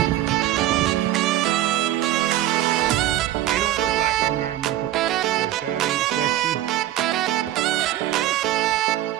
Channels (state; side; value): quieter; left; 13.5 dB